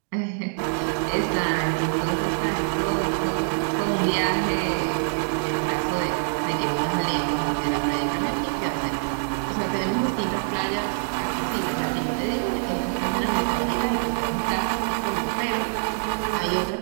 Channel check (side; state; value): left; silent; digital silence